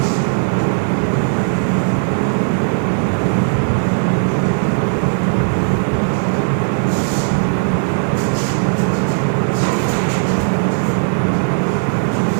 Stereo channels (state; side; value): silent; left; digital silence